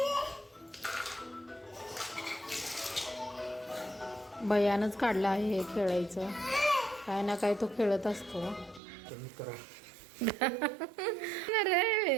भैयानंच काढला आहे हे खेळायचं. काय ना काय तो खेळत असतो.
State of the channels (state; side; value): drops out; left; at 8.8 s